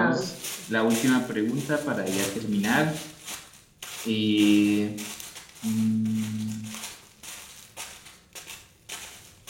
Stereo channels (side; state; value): both; identical; correlation 1.00